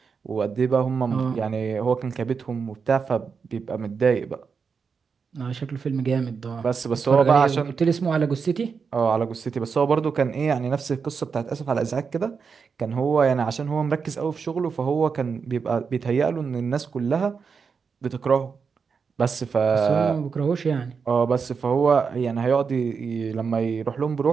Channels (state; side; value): quieter; left; 5.7 dB